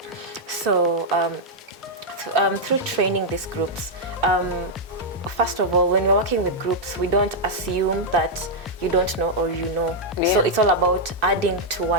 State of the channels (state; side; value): normal; both; correlation -0.04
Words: So through training these groups, first of all, when we're working with groups, we don't assume that you don't know or you know. So it's all about adding to